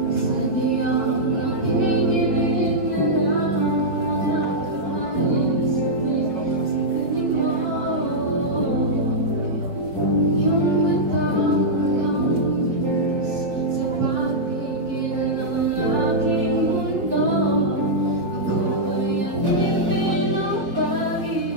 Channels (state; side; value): late; left; 4.4 ms